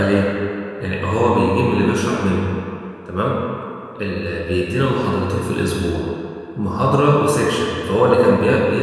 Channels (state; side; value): identical; both; correlation 1.00